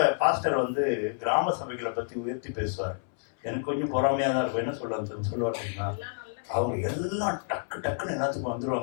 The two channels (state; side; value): silent; right; 59 dB below the other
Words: பாஸ்டர் வந்து கிராம சபைகளை பத்தி உயர்த்தி பேசுவார். எனக்கு கொஞ்சம் பொறாமையா தான் இருக்கும். என்ன சொல்லுவாருன்னா, அவங்க எல்லாம் டக்கு டக்குன்னு எல்லாத்துக்கும்